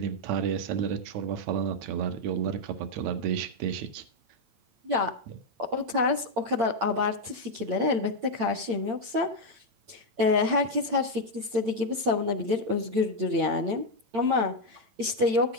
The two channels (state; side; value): late; left; 8.7 ms